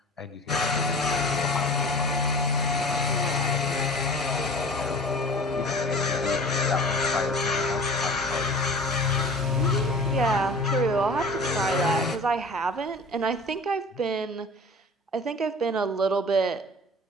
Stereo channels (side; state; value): both; normal; correlation 0.41